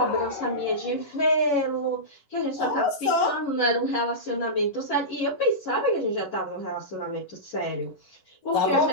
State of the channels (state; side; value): late; right; 11 ms